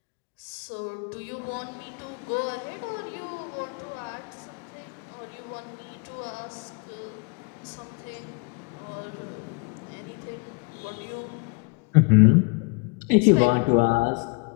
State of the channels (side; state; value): right; quieter; 31.4 dB